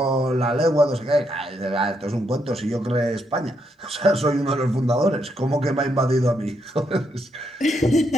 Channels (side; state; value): both; normal; correlation 0.78